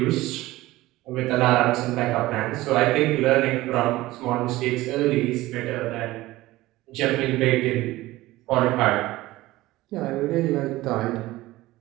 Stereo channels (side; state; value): left; quieter; 17.9 dB